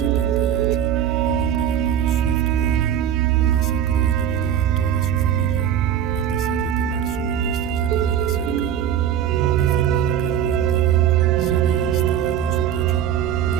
un hombre llamado Swift Runner masacró y devoró a toda su familia, a pesar de tener suministros de comida cerca. Afirmaba que el Wendigo se había instalado en su pecho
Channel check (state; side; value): quieter; left; 9.9 dB